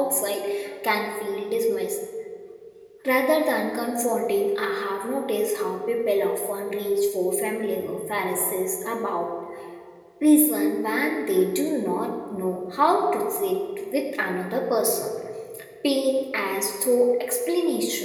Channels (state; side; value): identical; both; correlation 1.00